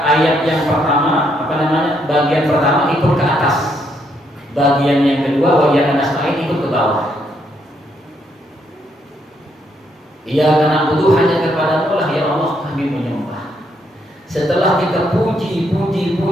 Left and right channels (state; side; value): normal; both; correlation 0.74